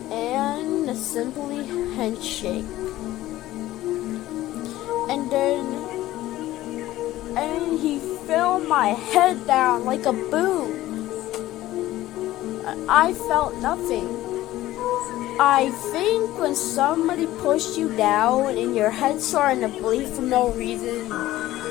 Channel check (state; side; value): quieter; right; 15.5 dB